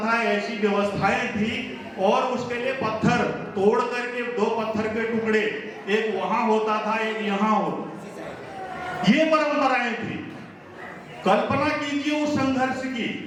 ऐसी व्यवस्थाएं थी। और उसके लिए पत्थर तोड़ करके 2 पत्थर के टुकड़े, एक वहां होता था, एक यहाँ होता। ये परंपराएं थी। कल्पना कीजिए उस संघर्ष की,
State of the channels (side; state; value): both; identical; correlation 1.00